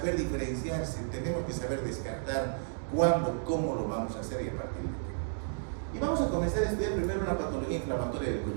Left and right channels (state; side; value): silent; left; digital silence